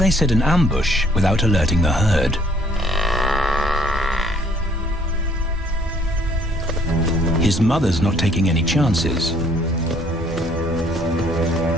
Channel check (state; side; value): normal; both; correlation 0.61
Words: set an ambush without alerting the herd? His mother's not taking any chances.